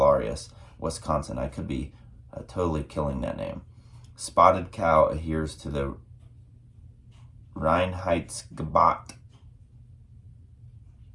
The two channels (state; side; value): identical; both; correlation 1.00